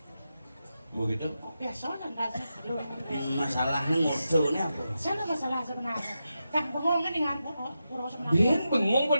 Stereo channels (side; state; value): both; inverted; correlation -0.89